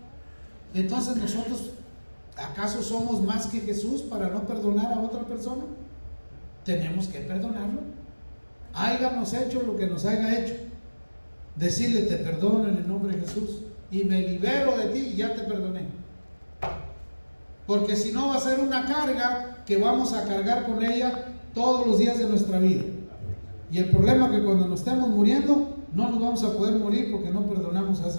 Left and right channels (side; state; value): both; inverted; correlation -1.00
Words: Entonces, nosotros, ¿acaso somos más que Jesús para no perdonar a otra persona? Tenemos que perdonarlo. Háganos hecho lo que nos haya hecho. Decirle: te perdono en el nombre de Jesús y me libero de ti y ya te perdoné. Porque si no, va a ser una carga que vamos a cargar con ella todos los días de nuestra vida. Y el problema es que cuando nos estemos muriendo, no nos vamos a poder morir porque no perdonamos a